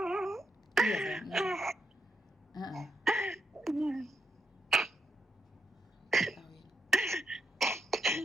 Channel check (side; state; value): both; normal; correlation 0.83